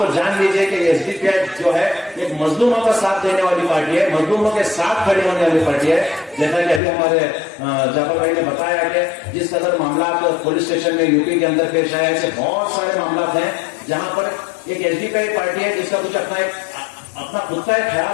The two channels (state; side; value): drops out; right; at 6.8 s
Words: जान लीजिए कि एसडीपीआई जो है एक मजलूमों का साथ देने वाली पार्टी है, मजलूमों के साथ खड़ी होने वाली पार्टी है। जैसा कि अभी हमारे जाफर भाई ने बताया कि जिस कदर मामला पुलिस स्टेशन में यूपी के अंदर पेश आए, ऐसे बहुत सारे मामला हैं जहां पर एक एसडीपीआई पार्टी है जिसका कुछ अपना खुद का एक